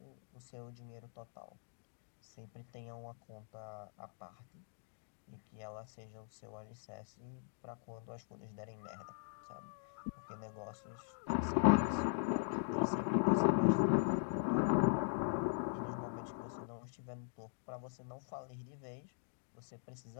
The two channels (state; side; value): silent; right; digital silence